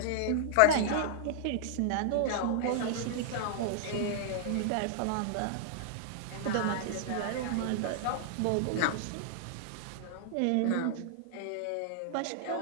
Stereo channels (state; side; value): different; both; correlation -0.01